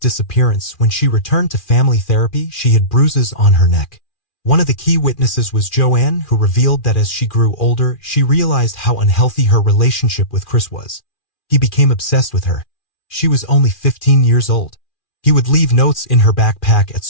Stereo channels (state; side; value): late; right; 2.4 ms